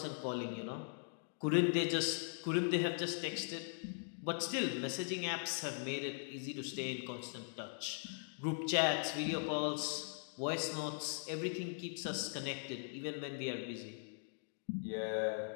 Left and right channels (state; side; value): silent; right; digital silence